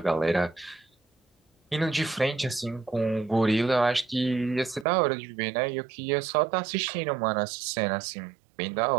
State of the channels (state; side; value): drops out; left; at 4.9 s